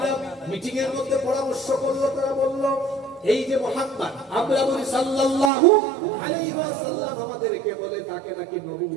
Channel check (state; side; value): drops out; left; at 5.5 s